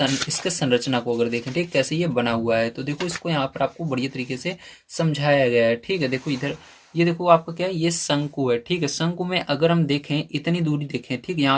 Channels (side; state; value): both; identical; correlation 1.00